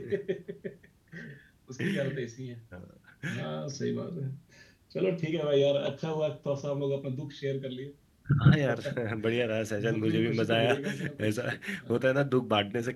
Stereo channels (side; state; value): both; identical; correlation 1.00